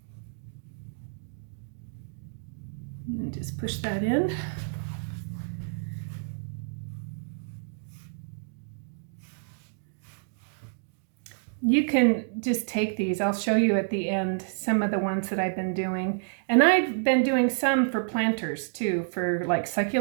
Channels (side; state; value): left; silent; digital silence